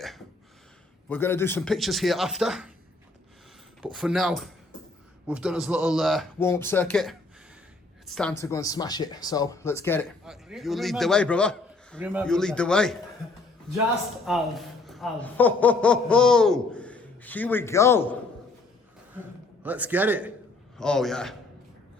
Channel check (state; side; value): quieter; right; 3.3 dB